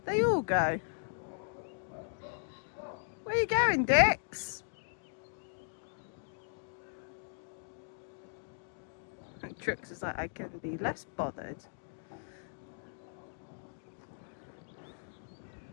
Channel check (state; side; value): silent; right; digital silence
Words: They all go. Where are you going, Dix? And Trix is like, I can be less bothered.